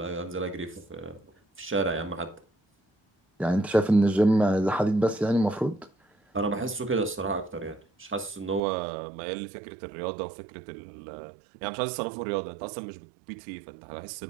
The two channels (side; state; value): left; drops out; at 8.6 s